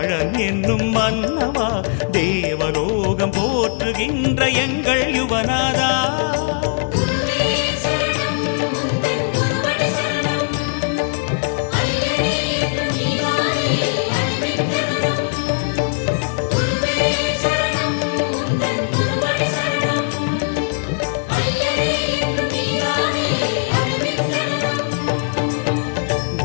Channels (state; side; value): silent; right; digital silence